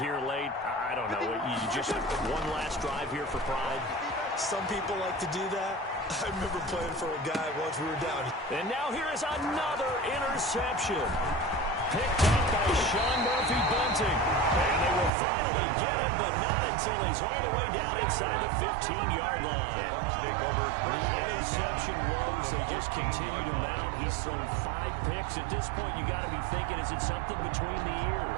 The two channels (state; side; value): drops out; left; at 15.1 s